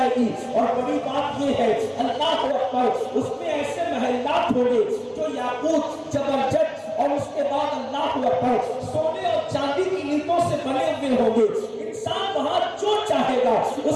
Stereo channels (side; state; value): both; identical; correlation 1.00